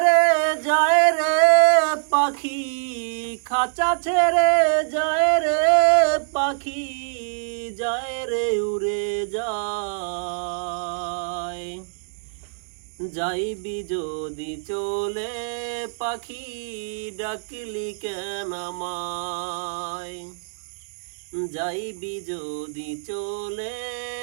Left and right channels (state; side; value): silent; left; digital silence